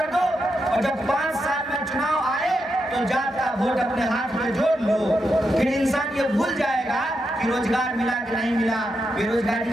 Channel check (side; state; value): both; normal; correlation 0.84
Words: दो, और जब 5 साल में चुनाव आए तो जात का वोट अपने हाथ में जोड़ लो। फिर इंसान ये भूल जाएगा कि रोजगार मिला कि नहीं मिला, बेरोजगारी